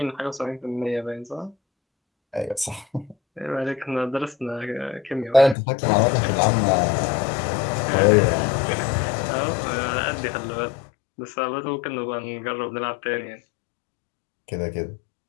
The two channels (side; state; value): right; drops out; at 5.6 s